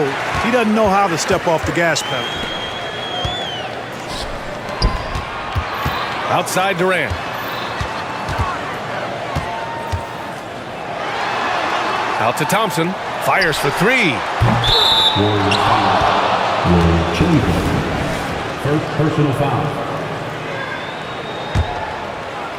He doesn't know how to step off the gas pedal. Outside Durant. Out to Thompson. Fires for three. First personal foul.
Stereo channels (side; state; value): both; identical; correlation 1.00